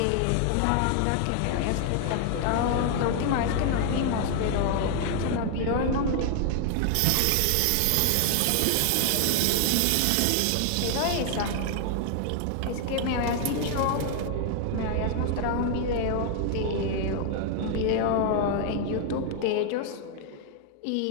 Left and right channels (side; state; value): both; different; correlation 0.00